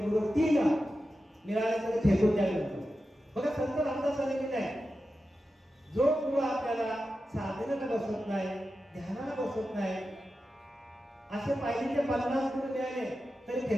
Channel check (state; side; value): normal; both; correlation 0.91